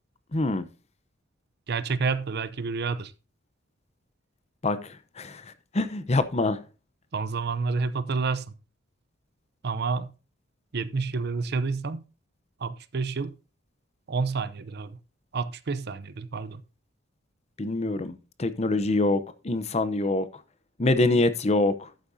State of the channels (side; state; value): both; normal; correlation 0.50